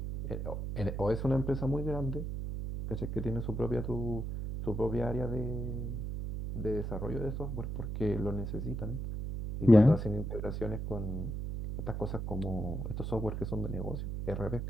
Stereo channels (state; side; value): noise; right; hum, 4 dB below the sound